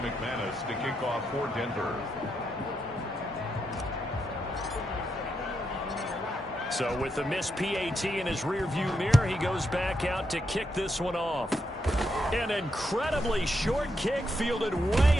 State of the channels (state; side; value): normal; both; correlation 0.82